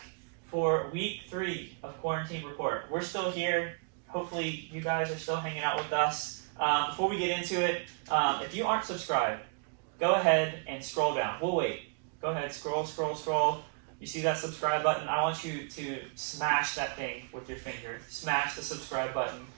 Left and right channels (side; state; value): left; quieter; 37.2 dB